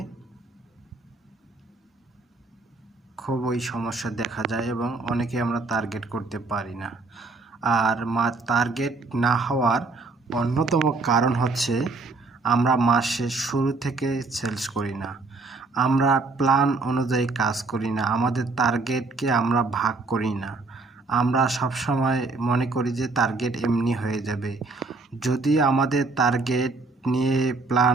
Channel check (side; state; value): left; quieter; 3.6 dB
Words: খুবই সমস্যা দেখা যায় এবং অনেকে আমরা টার্গেট করতে পারি না। আর টার্গেট না হওয়ার অন্যতম কারণ হচ্ছে আমরা মাসের শুরু থেকে সেলস করি না, আমরা প্ল্যান অনুযায়ী কাজ করি না, আমাদের টার্গেটকে আমরা ভাগ করি না। আমরা সবসময় মনে করি যে টার্গেট এমনি হয়ে যাবে। যদি আমাদের টার্গেট নিয়ে